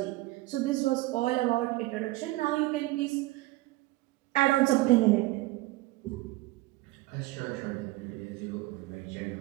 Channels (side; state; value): left; quieter; 18.9 dB